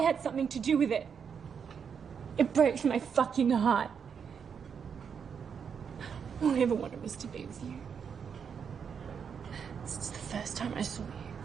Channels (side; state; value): left; quieter; 6.9 dB